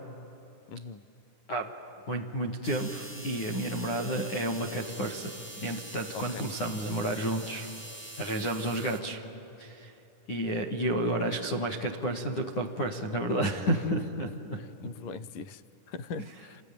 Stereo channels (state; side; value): late; right; 10 ms